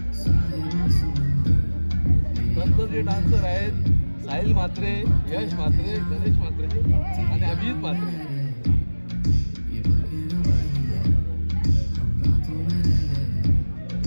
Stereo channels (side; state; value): both; inverted; correlation -1.00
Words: जे डान्सर आहेत साहिल म्हात्रे, यश म्हात्रे, गणेश म्हात्रे आणि अभिजित म्हात्रे.